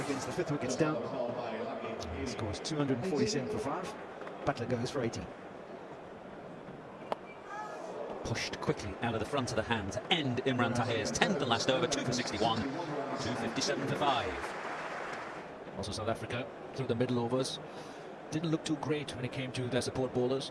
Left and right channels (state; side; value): identical; both; correlation 1.00